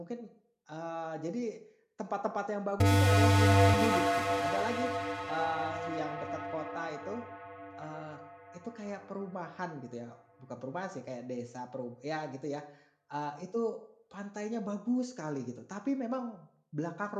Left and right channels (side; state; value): both; identical; correlation 1.00